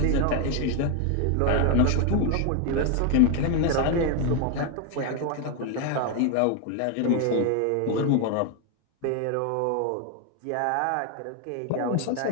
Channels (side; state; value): both; different; correlation 0.01